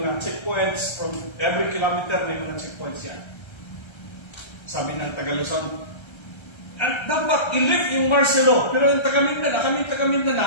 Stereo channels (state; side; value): late; right; 1.3 ms